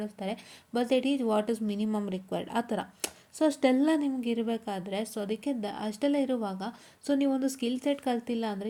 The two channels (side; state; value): both; identical; correlation 1.00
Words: but they teach what is minimum required ಆ ಥರ. ಸೊ ಅಷ್ಟೆಲ್ಲ ನಿಮ್ಗೆ ಇರಬೇಕಾದ್ರೆ, ಸೊ ಅದಕ್ಕೆ ಅಷ್ಟೆಲ್ಲ ಇರುವಾಗ, ಸೊ ನೀವೊಂದು ಸ್ಕಿಲ್ ಸೆಟ್ ಕಲ್ತಿಲ್ಲ